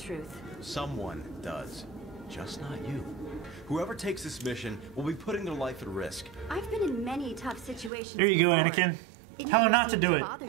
Someone does. Just not you. Whoever takes this mission will be putting their life at risk. I've been in many tough situations. Here you go, before. Anakin. It Tell her never not to seemed do it. Bother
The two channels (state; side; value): drops out; left; at 7.9 s